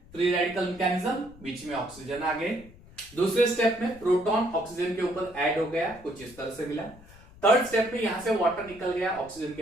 फ्री रेडिकल मैकेनिज्म, बीच में ऑक्सीजन आ गए। दूसरे स्टेप में प्रोटॉन ऑक्सीजन के ऊपर ऐड हो गया, कुछ इस तरह से मिला। थर्ड स्टेप में यहां से वाटर निकल गया, ऑक्सीजन के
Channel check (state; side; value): noise; left; rumble, 22 dB below the sound